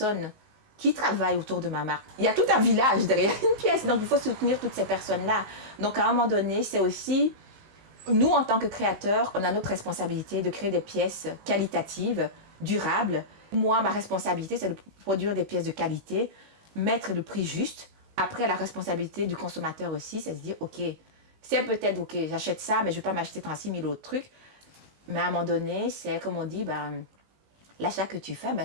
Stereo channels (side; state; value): left; late; 19 ms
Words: qui travaillent autour de ma marque. Il y a tout un village derrière une pièce, donc il faut soutenir toutes ces personnes-là. Donc à un moment donné, c'est aussi, nous en tant que créateurs, on a notre responsabilité de créer des pièces qualitatives, durables. Moi, ma responsabilité, c'est de produire des pièces de qualité, mettre le prix juste. Après, la responsabilité du consommateur aussi, c'est de se dire, ok, c'est peut-être, ok, j'achète ça, mais je ne vais pas m'acheter 36 000 autres trucs. Mais à un moment donné, c'est comme on dit, l'achat que tu fais,